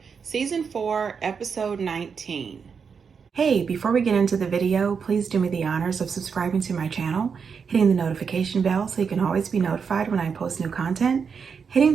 Season 4, Episode 19. Hey, before we get into the video, please do me the honors of subscribing to my channel, hitting the notification bell so you can always be notified when I post new content, hitting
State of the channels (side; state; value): left; quieter; 6.1 dB